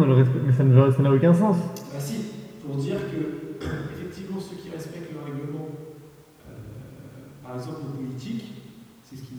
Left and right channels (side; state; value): both; identical; correlation 1.00